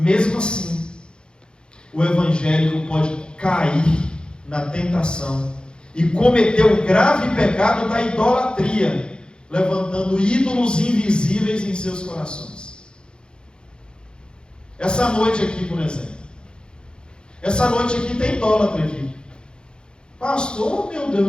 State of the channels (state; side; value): late; right; 0.050 ms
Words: assim, o evangélico pode cair na tentação e cometer o grave pecado da idolatria, levantando ídolos invisíveis em seus corações. Essa noite aqui, por exemplo. Essa noite aqui tem idólatra aqui. Pastor, meu